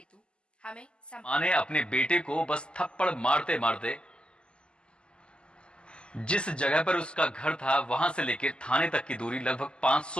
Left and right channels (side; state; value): right; late; 0.050 ms